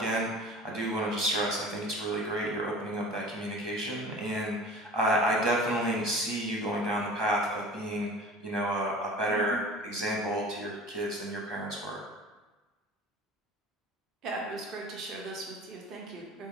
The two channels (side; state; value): both; normal; correlation 0.41